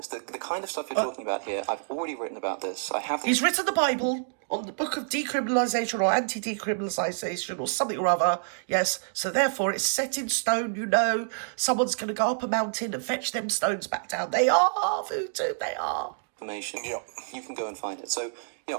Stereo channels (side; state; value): left; silent; digital silence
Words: The kind of stuff you're talking about here, I've already written about this. He's written the Bible on the book of decriminalisation or anti-decriminalisation or something or other. Yes, so therefore it's set in stone, you know. Someone's going to go up a mountain and fetch them stones back down. They are voodoo, they are. Information. Yeah. You can go and find it. So,